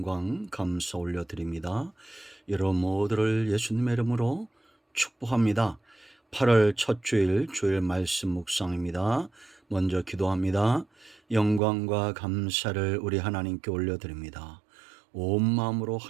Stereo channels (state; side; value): drops out; left; at 11.6 s